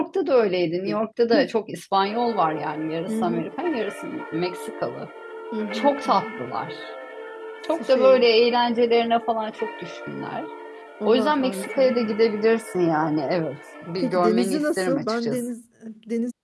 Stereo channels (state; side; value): identical; both; correlation 1.00